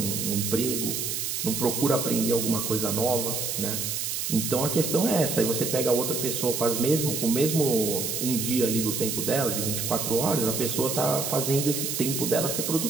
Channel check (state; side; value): noise; right; hiss, 2 dB below the sound